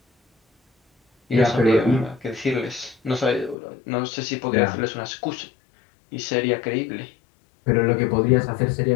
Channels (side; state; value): right; drops out; at 3.6 s